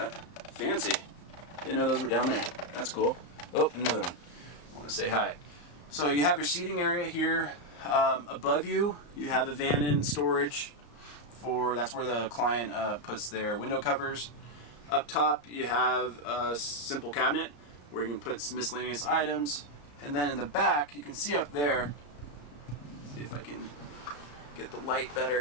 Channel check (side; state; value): right; late; 34 ms